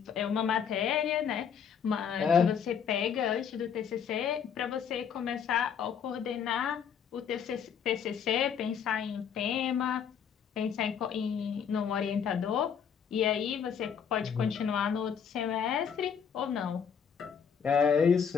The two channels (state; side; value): quieter; right; 7.4 dB